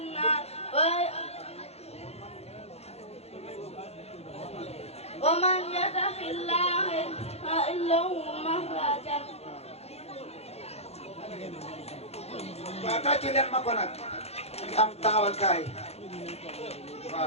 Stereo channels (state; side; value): late; right; 0.30 ms